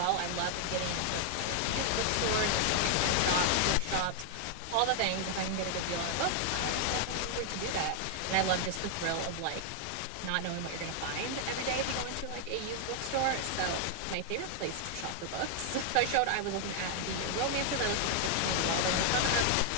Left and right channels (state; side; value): different; both; correlation 0.00